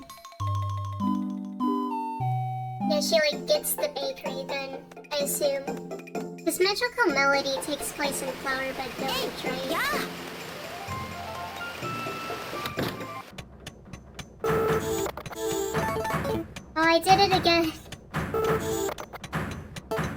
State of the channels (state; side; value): identical; both; correlation 1.00